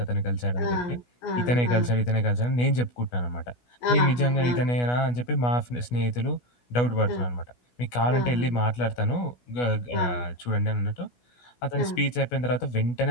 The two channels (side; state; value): right; late; 16 ms